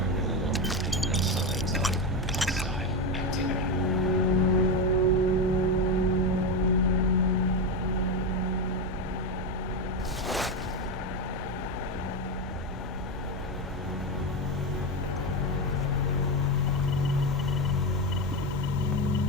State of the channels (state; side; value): normal; both; correlation 0.13